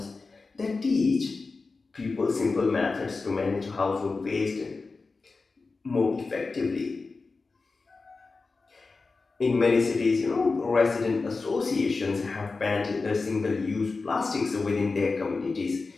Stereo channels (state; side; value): quieter; right; 4.0 dB